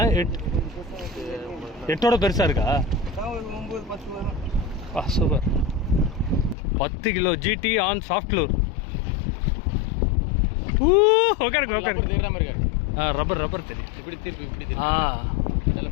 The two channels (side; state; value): right; drops out; at 6.6 s